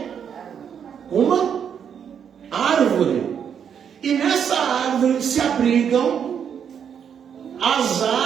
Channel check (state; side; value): quieter; left; 7.9 dB